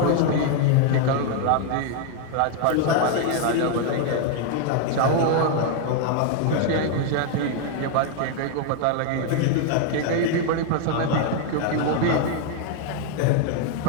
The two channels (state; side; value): different; both; correlation 0.00